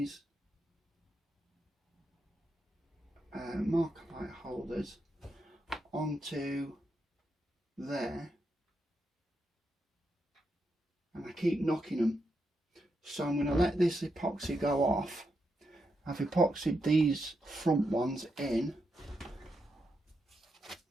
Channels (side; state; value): both; normal; correlation 0.84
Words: Markerite holders onto there, and I keep knocking them. So I'm going to let this epoxy go off. I've epoxied these front ones in.